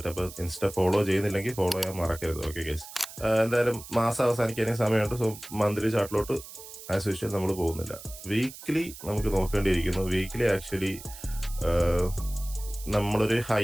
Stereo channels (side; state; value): right; noise; hiss, 15 dB below the sound